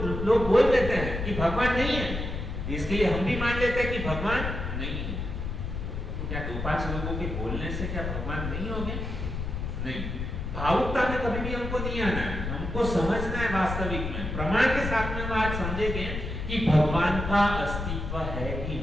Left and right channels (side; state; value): left; noise; rumble, 4 dB below the sound